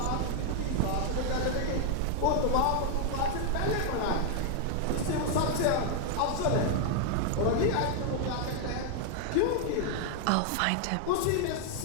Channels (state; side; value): different; both; correlation 0.00